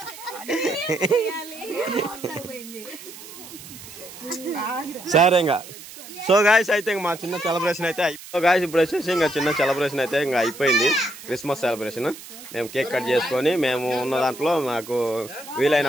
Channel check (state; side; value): noise; right; hiss, 15 dB below the sound